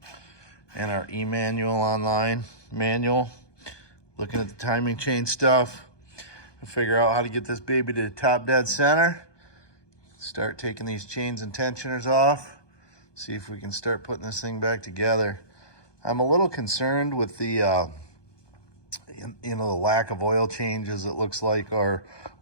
And our e-manual online manual. Looking at the timing chain stuff. To figure out how to get this baby to the top dead center. Start taking these chains and tensioners off. See if we can start putting this thing back together. I'm a little concerned with the the lack of oil changes, it looks like, or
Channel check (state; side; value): late; right; 1.2 ms